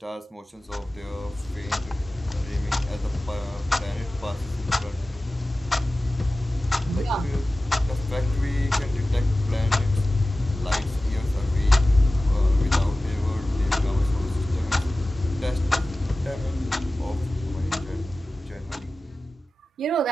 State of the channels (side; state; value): both; normal; correlation 0.96